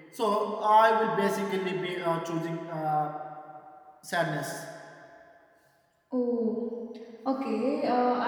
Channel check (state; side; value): identical; both; correlation 1.00